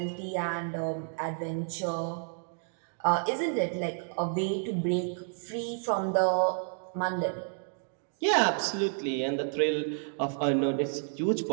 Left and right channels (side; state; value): left; silent; digital silence